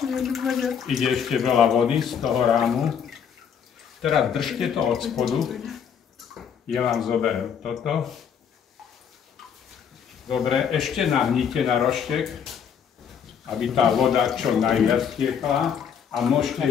Ide ešte veľa vody z toho rámu. Teraz držte to od spodu. Ja vám zoberiem toto. Dobre, ešte nahnite na roštek, aby tá voda čo najviac tiekla. A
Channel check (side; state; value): right; quieter; 7.7 dB